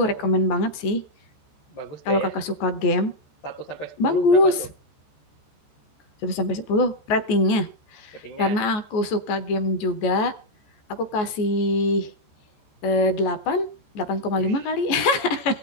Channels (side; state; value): right; late; 14 ms